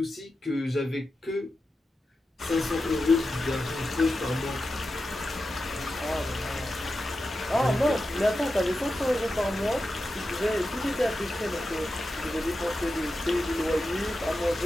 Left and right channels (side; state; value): both; normal; correlation 0.91